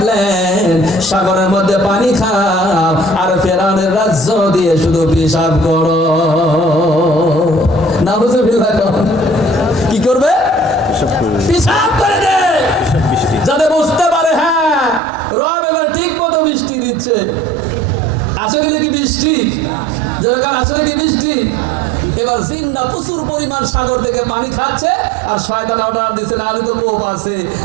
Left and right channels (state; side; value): drops out; left; at 15.0 s